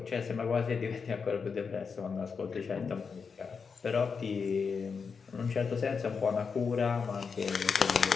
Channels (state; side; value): quieter; right; 5.6 dB